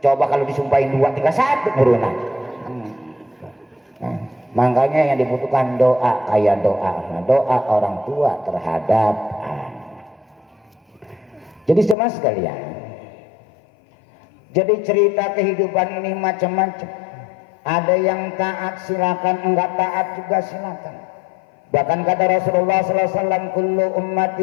Coba kalau disumpahin 2, tinggal 1 burunan. Makanya yang dibutuhkan doa, kayak doa orang tua terhadap anak. Jadi jemaah sekalian, jadi cerita kehidupan ini macam-macam. Ada yang taat silakan, enggak taat juga silakan. Bahkan kata Rasulullah SAW, kullu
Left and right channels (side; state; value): right; drops out; at 12.0 s